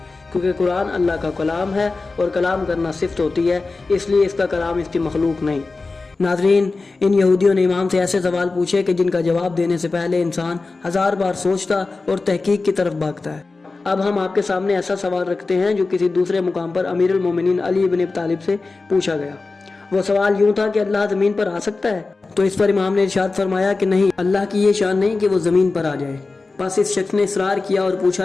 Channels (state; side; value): quieter; right; 3.7 dB